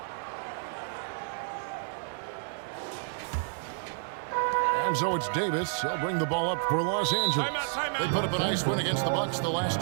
And so it's Davis. He'll bring the ball up for Los Angeles. They put up a nice win against the Bucks the last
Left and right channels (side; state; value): left; silent; digital silence